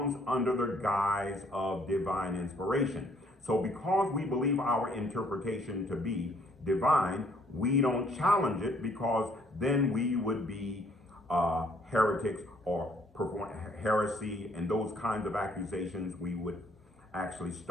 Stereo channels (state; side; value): normal; both; correlation 0.63